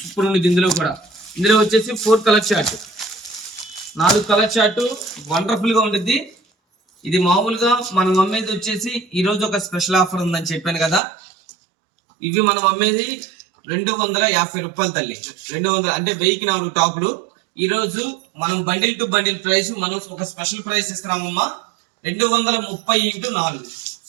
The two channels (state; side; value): drops out; left; at 11.0 s